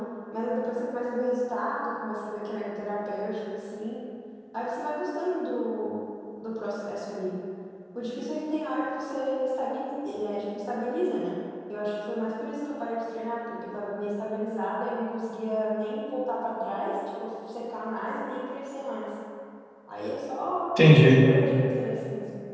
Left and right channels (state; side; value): identical; both; correlation 1.00